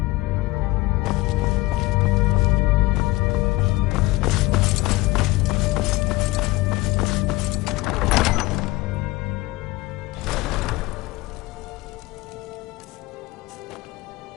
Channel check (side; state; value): right; quieter; 20.5 dB